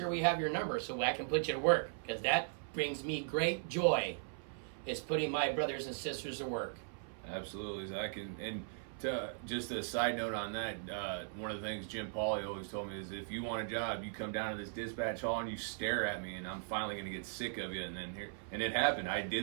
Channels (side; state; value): left; silent; 52 dB below the other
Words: we have your number so I can put you to work, because that brings me great joy, is putting my brothers and sisters to work. Absolutely, Zach. And to just a side note on that, one of the things Jim Pauly always told me is, if you want a job, you come down to this dispatch hall and you stare at me, and I'm finally gonna get sick of you. And it happened. I